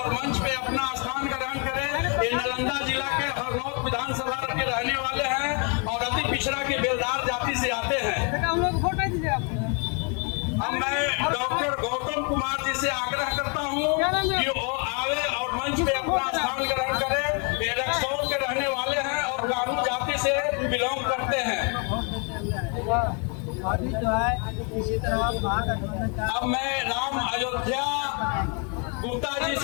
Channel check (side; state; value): right; quieter; 36.1 dB